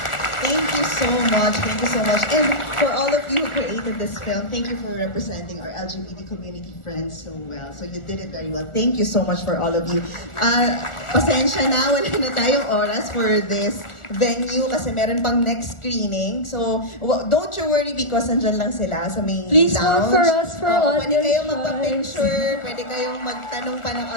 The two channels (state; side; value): late; right; 1.4 ms